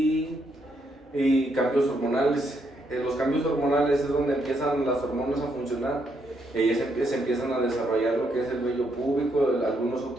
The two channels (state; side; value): normal; both; correlation 0.76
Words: cambios hormonales. Los cambios hormonales es donde empiezan las hormonas a funcionar y ahí se empiezan a desarrollar lo que es el vello púbico, algunos